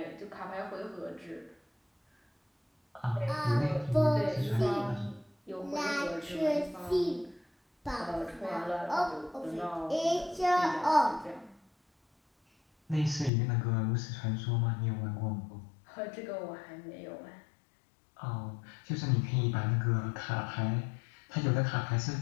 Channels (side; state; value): right; drops out; at 13.3 s